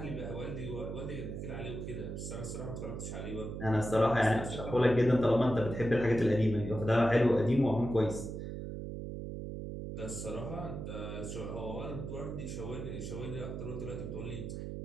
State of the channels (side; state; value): right; noise; hum, 6 dB below the sound